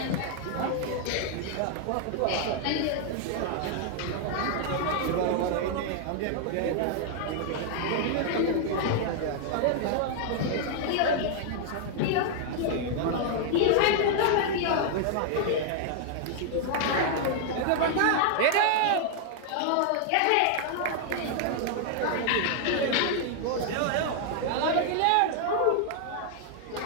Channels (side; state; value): both; different; correlation 0.00